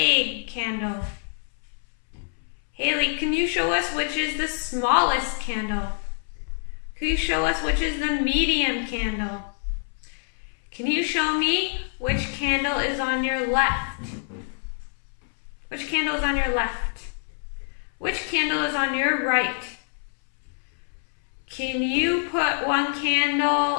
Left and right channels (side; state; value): right; silent; 61 dB below the other